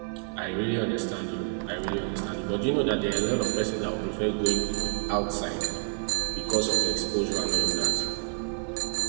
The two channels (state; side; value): silent; left; 59 dB below the other